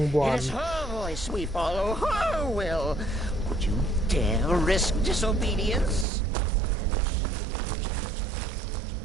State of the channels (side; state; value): left; drops out; at 6.1 s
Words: 1. It is her voice we follow, her will. Would you dare risk disobedience?